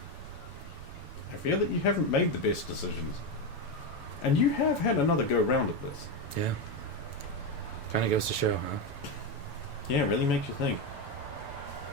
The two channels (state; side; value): late; right; 7.0 ms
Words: you haven't made the best decisions. And you have had another go round at this. Yeah. Kind of goes to show, huh? Yeah, it really makes you think.